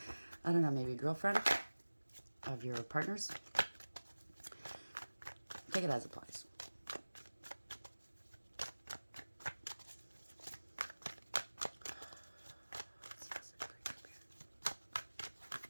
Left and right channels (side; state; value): both; inverted; correlation -1.00